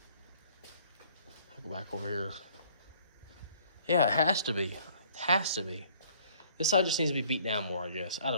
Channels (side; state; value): both; inverted; correlation -0.58